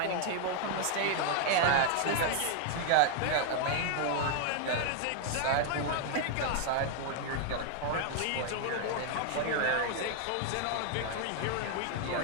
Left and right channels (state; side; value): different; both; correlation 0.00